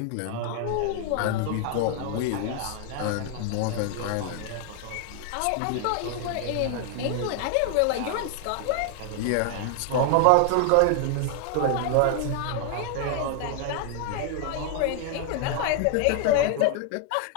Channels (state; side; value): different; both; correlation 0.00